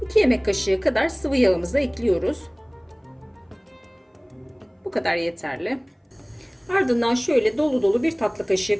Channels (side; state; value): both; identical; correlation 1.00